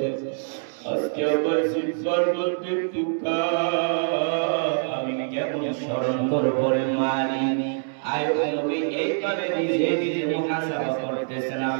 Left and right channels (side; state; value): left; silent; digital silence